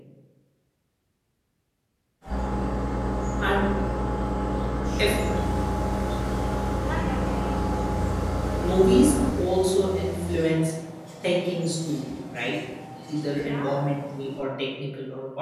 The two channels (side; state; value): both; identical; correlation 1.00